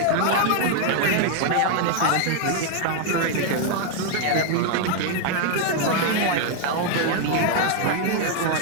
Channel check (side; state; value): both; different; correlation 0.00